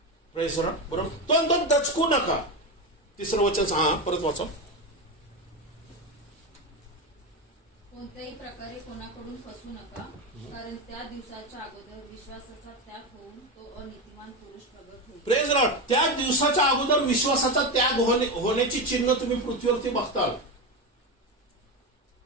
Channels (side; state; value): both; normal; correlation 0.16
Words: Praise the Lord. बरोबर. तो दचकू नका. तिसरं वचन परत वाचा. कोणत्याही प्रकारे कोणाकडून फसू नका, कारण त्या दिवसाच्या अगोदर विश्वासाचा त्याग होऊन तो अनीतिमान पुरुष प्रगट होईल. Praise the Lord. त्या दिवसाच्या अगोदर विश्वासाचा त्याग होण्याची चिन्ह तुम्ही पृथ्वीवरती बघताल.